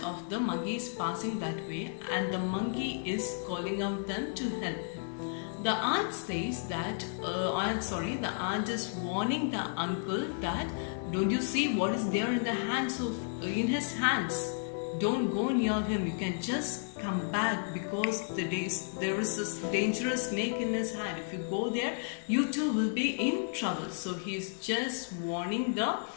of the monkey is passing that way, and the monkey is calling out them to help him. The aunt says that, the aunt is warning the uncle that, don't you see what is there in his hands? Don't go near him. You can just come back because there is this dangerous snake in his hand. If you go there, you too will be in trouble. So he's just warning the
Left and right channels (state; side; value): silent; right; digital silence